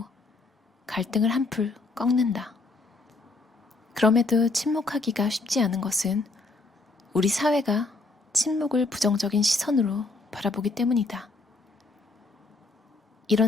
갈등을 한풀 꺾는다. 그럼에도 침묵하기가 쉽지 않은 것은 우리 사회가 침묵을 부정적인 시선으로 바라보기 때문이다.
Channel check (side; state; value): right; quieter; 3.4 dB